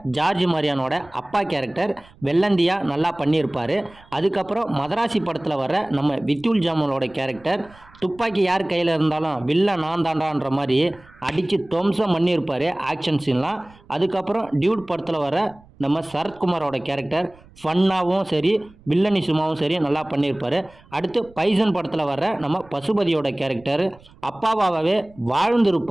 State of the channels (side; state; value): right; noise; rumble, 26 dB below the sound